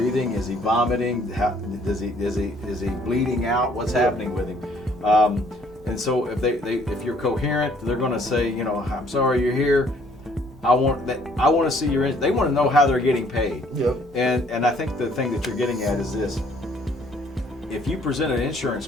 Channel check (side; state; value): both; normal; correlation 0.61